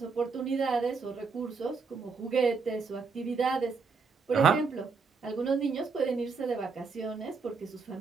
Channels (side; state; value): left; quieter; 4.9 dB